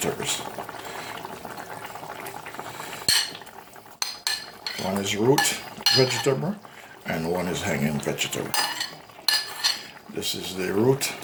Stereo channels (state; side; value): identical; both; correlation 1.00